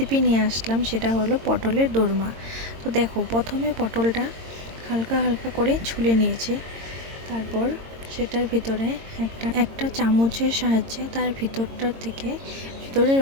নিয়ে আসলাম, সেটা হলো পটলের দোরমা। তো দেখো, প্রথমে পটলটা হালকা হালকা করে ছুলে নিয়েছি। তারপর সেটার ভিতরে একটা চামচের সাহায্যে তার ভিতরের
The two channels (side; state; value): left; late; 22 ms